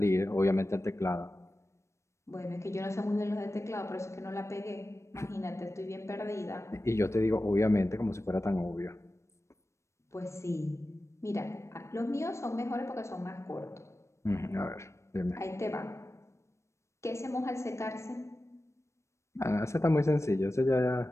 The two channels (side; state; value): right; late; 0.14 ms